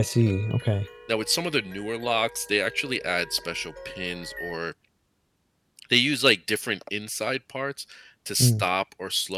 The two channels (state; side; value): identical; both; correlation 1.00